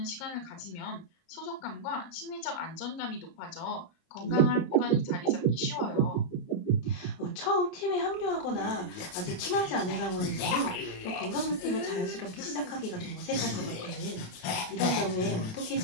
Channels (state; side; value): late; right; 28 ms